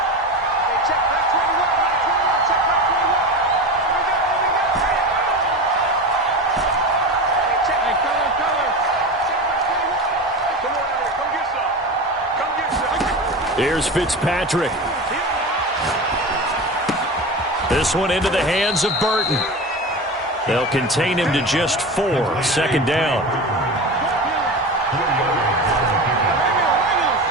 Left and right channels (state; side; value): normal; both; correlation 0.26